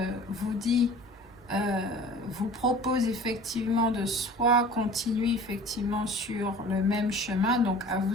vous dit, vous propose effectivement de soit continuer effectivement sur le même chemin, donc à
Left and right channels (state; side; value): normal; both; correlation 0.43